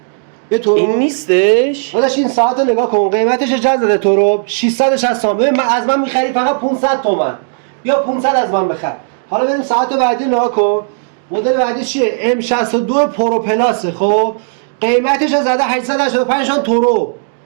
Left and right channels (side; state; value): left; silent; digital silence